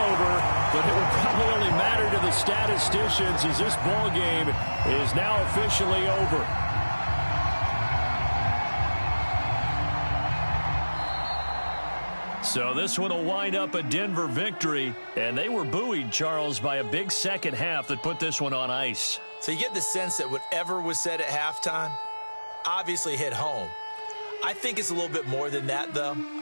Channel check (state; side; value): inverted; both; correlation -1.00